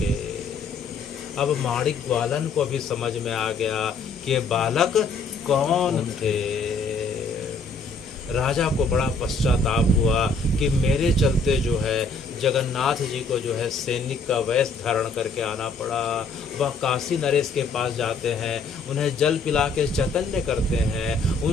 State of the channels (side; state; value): right; quieter; 4.0 dB